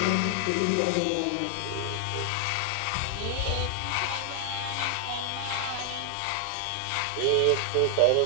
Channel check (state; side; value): different; both; correlation 0.00